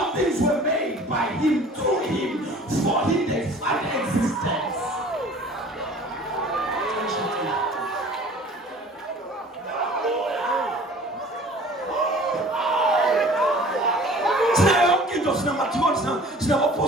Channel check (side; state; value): both; normal; correlation 0.47